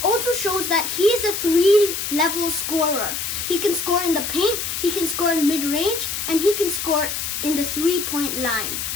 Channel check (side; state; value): left; noise; hiss, 4 dB below the sound